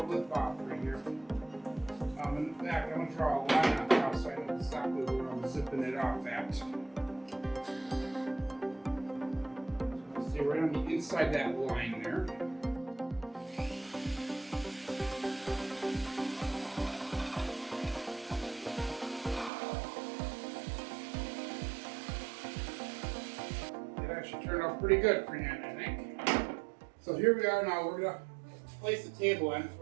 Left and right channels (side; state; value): left; drops out; at 19.5 s